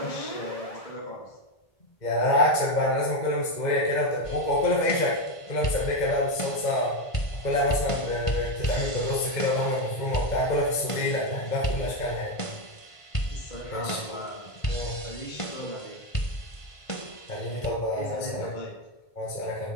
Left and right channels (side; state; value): right; late; 1.5 ms